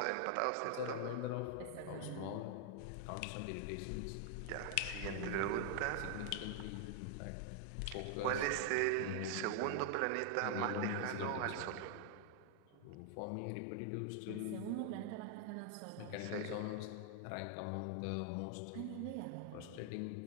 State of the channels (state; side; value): different; both; correlation 0.00